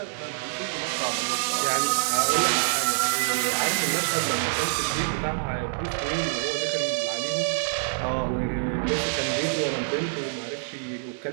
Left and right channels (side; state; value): left; silent; digital silence